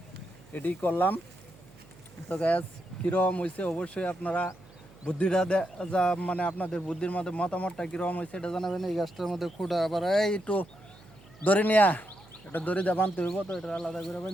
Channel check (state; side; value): noise; right; hum, 24 dB below the sound